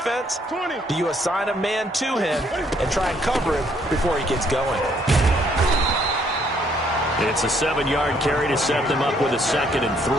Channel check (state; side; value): normal; both; correlation 0.67